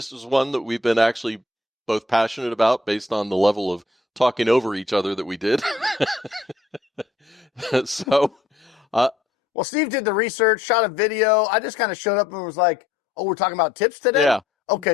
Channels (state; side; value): quieter; right; 3.2 dB